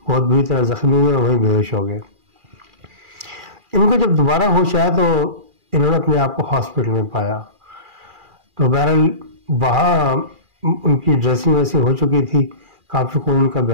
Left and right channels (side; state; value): left; late; 2.4 ms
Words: बहुत बुरी तरह जख्मी हुए और वहीं बेहोश हो गए। इनको जब दोबारा होश आया तो इन्होंने अपने आप को हॉस्पिटल में पाया। तो बहरहाल वहाँ उनकी ड्रेसिंग वैसी हो चुकी थी, काफी खून उनका